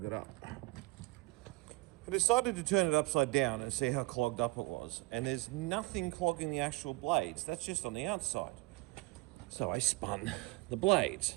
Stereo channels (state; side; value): quieter; left; 24.5 dB